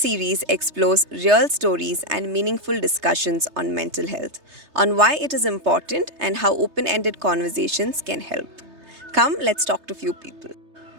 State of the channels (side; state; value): left; late; 3.3 ms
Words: explores real stories and meaningful discussions on mental health, on why it is important and how open ended conversations can help. Come, let's talk to few people.